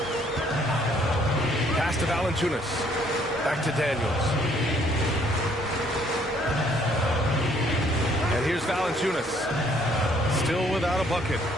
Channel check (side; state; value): both; normal; correlation 0.64